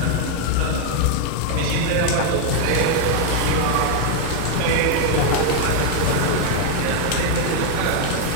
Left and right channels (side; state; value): both; different; correlation 0.00